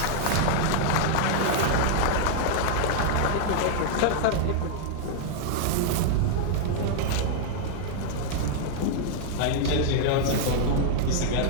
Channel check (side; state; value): both; different; correlation -0.01